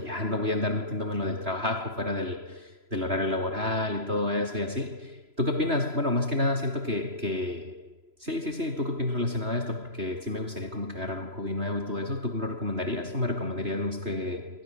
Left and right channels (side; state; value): left; late; 3.0 ms